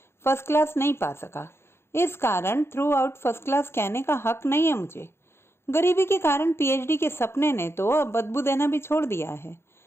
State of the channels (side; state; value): right; late; 0.12 ms